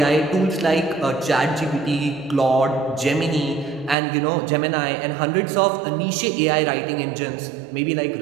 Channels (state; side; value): drops out; left; at 4.0 s